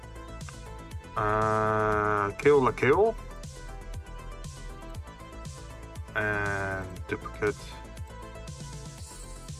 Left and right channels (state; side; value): identical; both; correlation 1.00